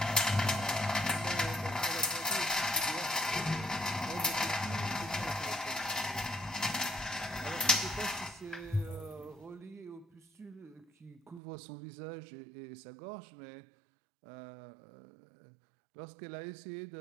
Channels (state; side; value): drops out; left; at 11.4 s